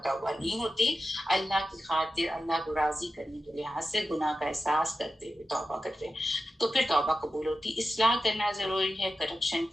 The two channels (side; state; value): both; normal; correlation 0.92